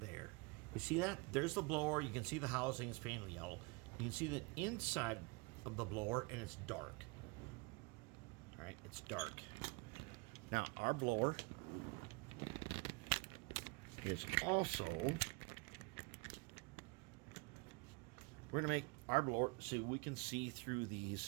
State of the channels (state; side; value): quieter; left; 27.7 dB